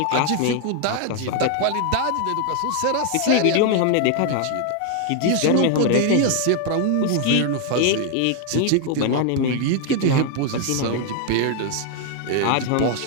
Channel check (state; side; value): different; both; correlation 0.00